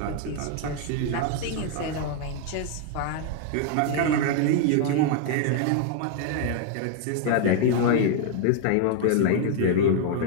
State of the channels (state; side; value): different; both; correlation 0.00